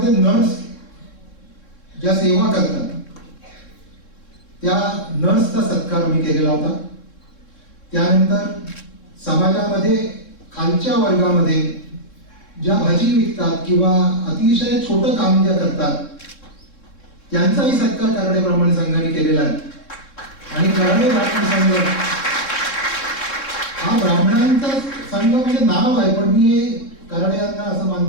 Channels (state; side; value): late; right; 3.7 ms